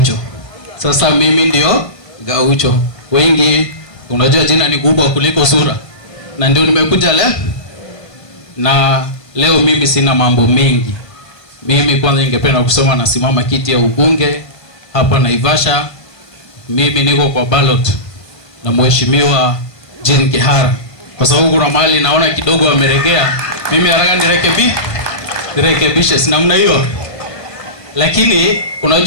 Sasa mimi ndio Gaucho. Wengi unajua jina ni kubwa kuliko sura. Na ndio nimekuja leo. Na leo mimi sina mambo mengi. Mimi kwanza ningependa kusoma na simama kiti ya ubunge hapa Naivasha. Mimi niko kwa ballot na mheshimiwa Jean Kihara. Kwa sababu kuna mahali naona kidogo ameregea. Mimi haraka nirekebishe si namna hiyo. Lakini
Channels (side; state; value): right; late; 1.5 ms